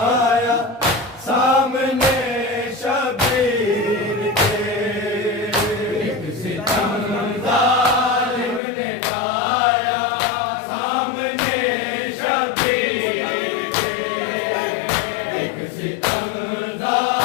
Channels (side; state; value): right; drops out; at 8.6 s